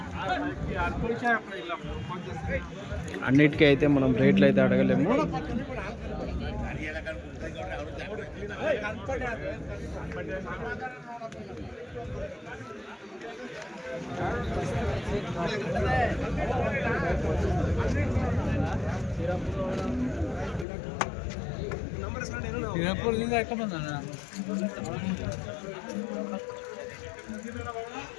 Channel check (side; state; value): right; drops out; at 20.7 s